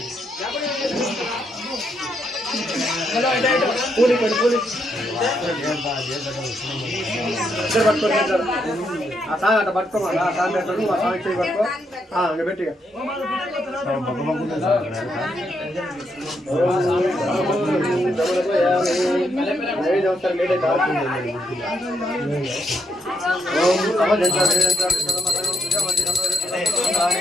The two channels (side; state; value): both; normal; correlation 0.78